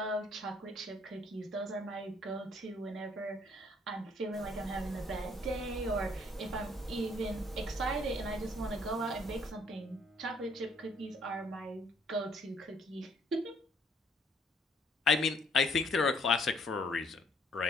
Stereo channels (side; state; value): both; normal; correlation 0.64